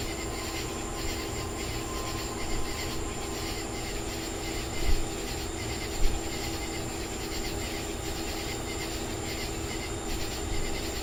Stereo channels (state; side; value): identical; both; correlation 1.00